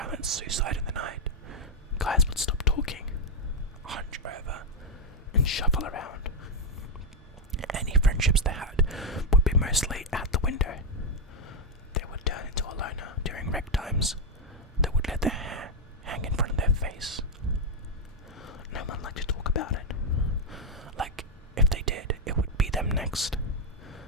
suicide in the night. Guys would stop talking, hunch over, and shuffle around. Any friendships they had would be mostly out the window. They would turn into a loner during rec times. They would let their hair hang in front of their face. No one liked to talk about it. Like, if they did, it would be them next.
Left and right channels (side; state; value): both; normal; correlation 0.01